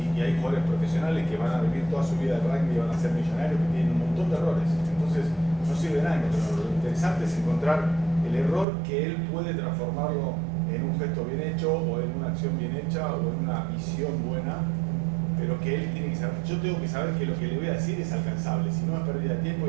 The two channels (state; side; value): drops out; left; at 8.7 s